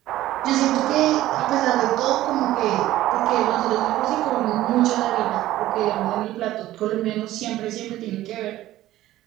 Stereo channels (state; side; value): quieter; left; 14.9 dB